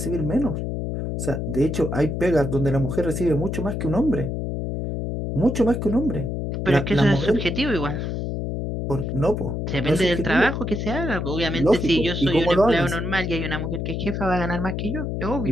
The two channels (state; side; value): noise; left; hum, 3 dB below the sound